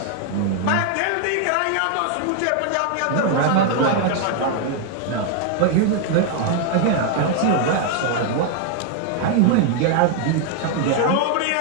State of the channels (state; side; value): different; both; correlation 0.00